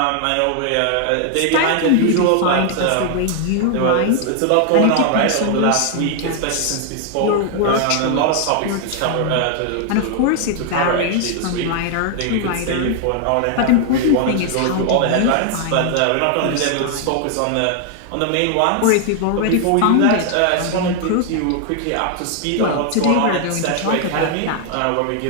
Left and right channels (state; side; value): different; both; correlation 0.00